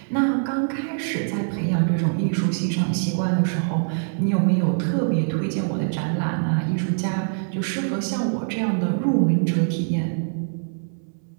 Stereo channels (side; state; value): left; silent; 63 dB below the other